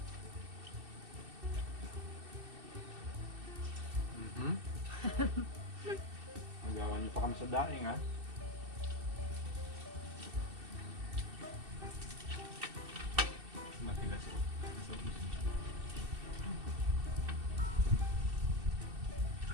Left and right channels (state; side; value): late; left; 2.7 ms